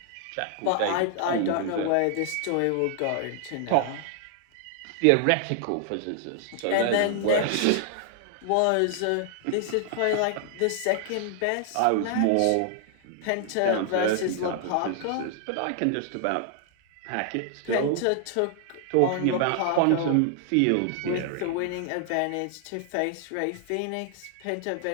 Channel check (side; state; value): both; different; correlation 0.00